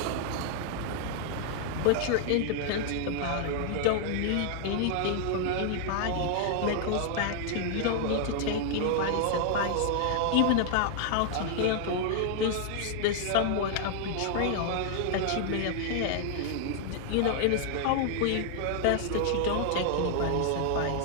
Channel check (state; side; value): different; both; correlation 0.00